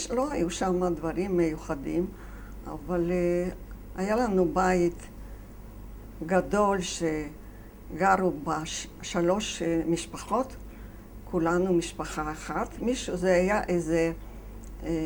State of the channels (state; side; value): identical; both; correlation 1.00